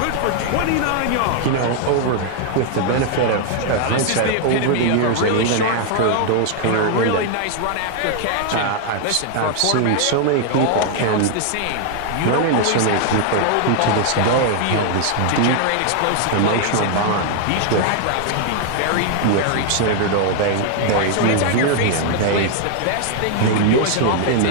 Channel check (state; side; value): different; both; correlation 0.00